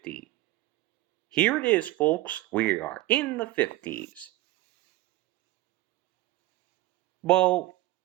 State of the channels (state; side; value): quieter; left; 17.2 dB